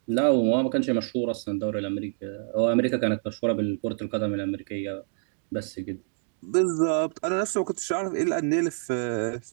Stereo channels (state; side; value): silent; left; digital silence